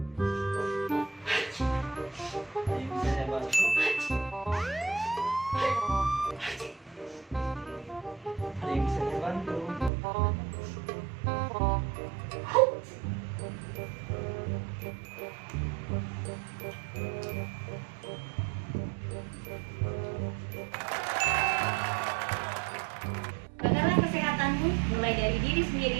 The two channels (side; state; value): left; drops out; at 9.9 s